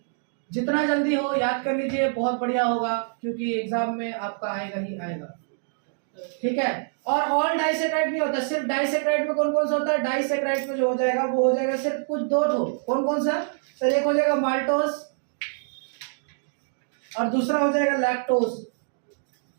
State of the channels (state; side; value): silent; left; digital silence